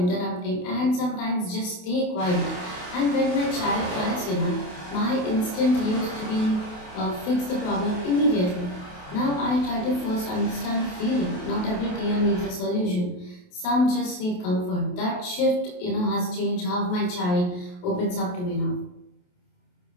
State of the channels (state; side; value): late; right; 28 ms